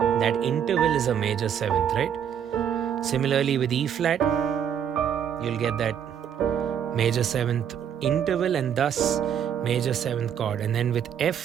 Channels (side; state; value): left; quieter; 8.7 dB